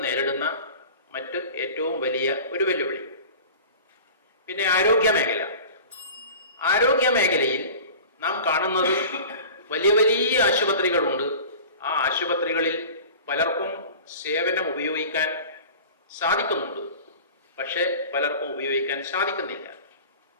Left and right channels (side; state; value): both; inverted; correlation -0.38